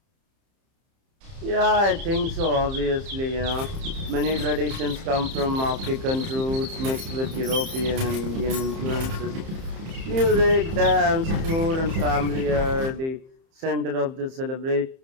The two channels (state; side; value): late; left; 30 ms